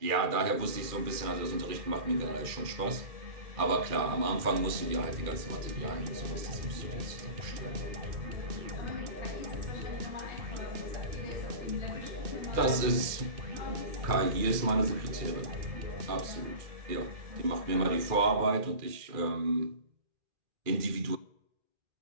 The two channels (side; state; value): left; late; 2.4 ms